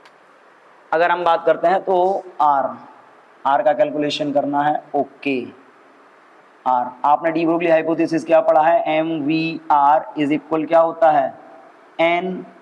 अगर हम बात करते हैं तो R का कैलकुलेशन करना है। ओके, R आपने डी ब्रोगली हाइपोथेसिस क्या पढ़ा है, MVR इज इक्वल क्या होता है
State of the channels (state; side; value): identical; both; correlation 1.00